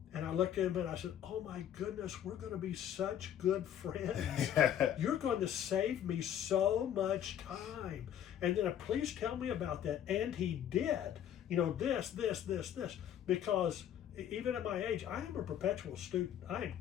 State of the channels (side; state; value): right; quieter; 10.1 dB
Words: And I looked at him and I said, oh my goodness, we're going to be such good friends. You're going to save me so much time. And then please tell me about that. And he did. This. Because even at my age, I am a perpetual student. I am